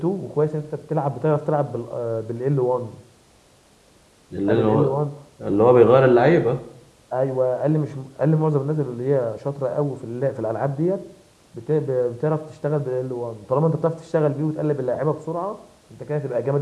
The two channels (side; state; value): both; identical; correlation 1.00